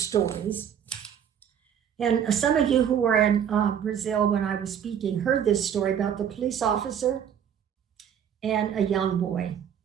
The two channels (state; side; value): quieter; left; 8.7 dB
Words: And some of you who were in Brazil when I was speaking heard this story about the police officer and a young boy.